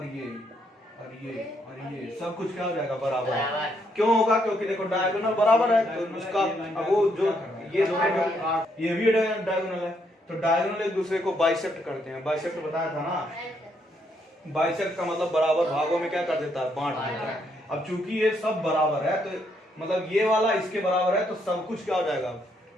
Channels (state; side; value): normal; both; correlation 0.74